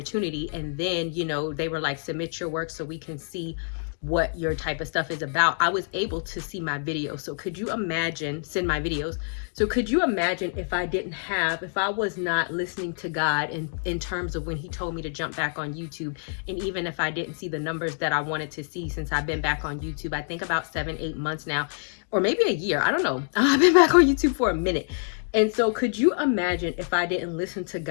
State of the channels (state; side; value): silent; right; digital silence